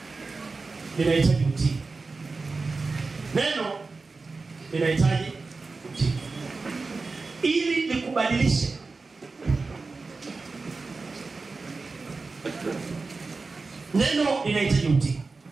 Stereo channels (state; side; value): quieter; left; 4.0 dB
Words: linahitaji utii. Neno linahitaji utii ili likubadilishe. Neno linahitaji utii.